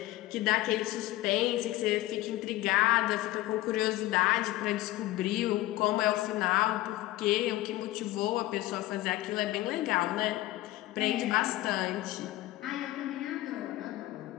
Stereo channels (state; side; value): quieter; right; 16.7 dB